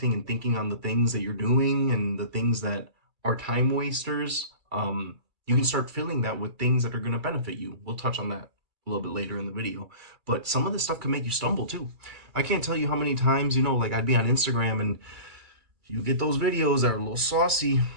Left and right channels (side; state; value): left; late; 2.4 ms